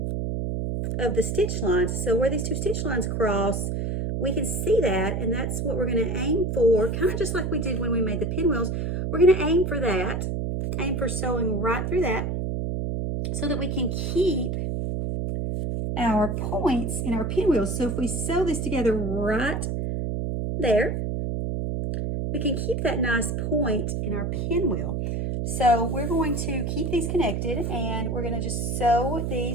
of the stitch lines. So where these two stitch lines cross, we can see that, and that's what we're going to aim for, kind of just like we did when we made the pinwheels. We're going to aim for that, aim for sewing right through that, so that we can keep our points in our pinwheels. So if we sew this together right there, we can keep that nice point in our pinwheel. So we're going to keep these connected, and we're going to just sew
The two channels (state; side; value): noise; right; hum, 1 dB below the sound